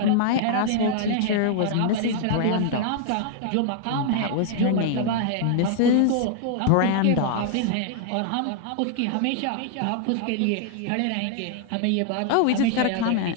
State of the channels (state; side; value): different; both; correlation 0.00